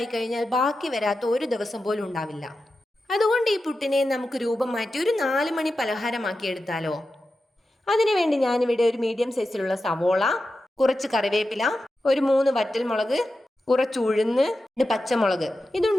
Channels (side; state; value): both; normal; correlation 0.92